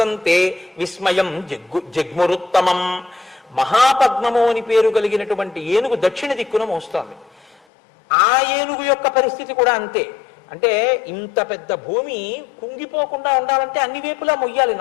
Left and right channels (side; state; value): right; drops out; at 7.6 s